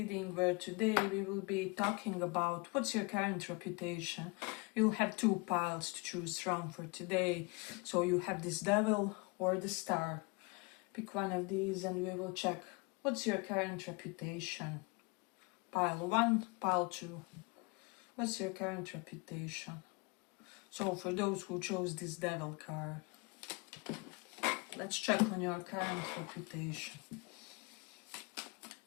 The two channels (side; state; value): right; quieter; 28.4 dB